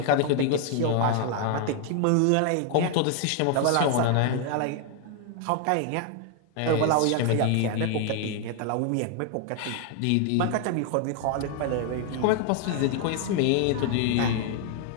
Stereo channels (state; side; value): different; both; correlation 0.00